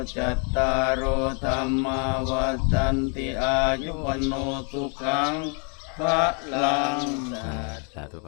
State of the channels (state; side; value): quieter; right; 38.1 dB